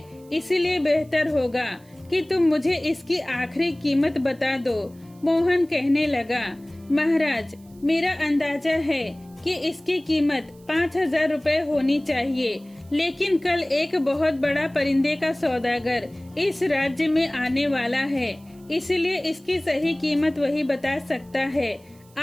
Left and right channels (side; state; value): right; noise; hiss, 29 dB below the sound